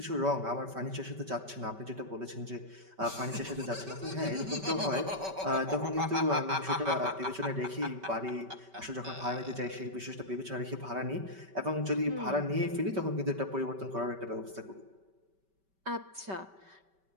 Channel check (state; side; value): late; left; 5.2 ms